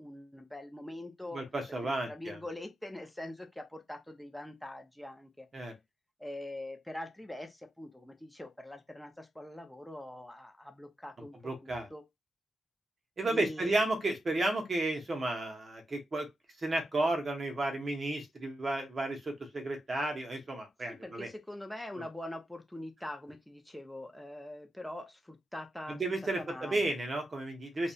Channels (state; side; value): normal; both; correlation 0.89